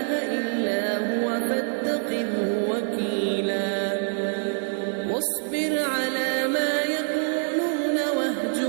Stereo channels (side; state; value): left; silent; 61 dB below the other